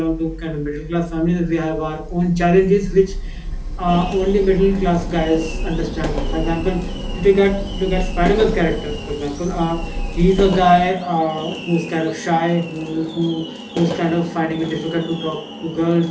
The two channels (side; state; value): both; identical; correlation 1.00